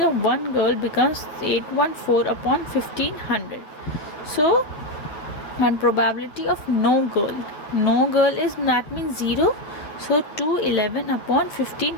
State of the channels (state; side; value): late; right; 9.8 ms